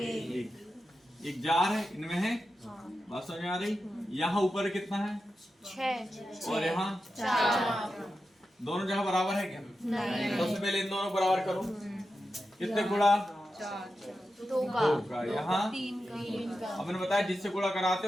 एक जार है, इनमें है, बात समझ में आ रही? यहाँ ऊपर कितना है? 6 और यहाँ 4। दोनों जगह बराबर है क्या? नहीं। सबसे पहले इन दोनों बराबर करो। कितने गुणा? 2 का। यहाँ 3 का। अब मैंने बताया जिससे गुणा कराते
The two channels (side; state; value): both; normal; correlation 0.91